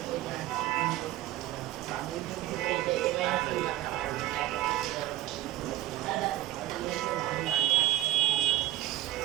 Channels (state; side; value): quieter; left; 15.2 dB